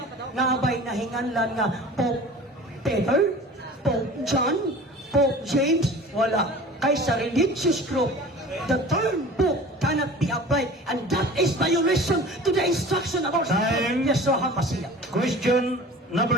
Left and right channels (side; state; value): both; normal; correlation 0.41